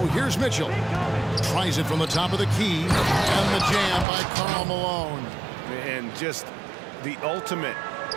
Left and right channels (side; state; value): left; drops out; at 4.0 s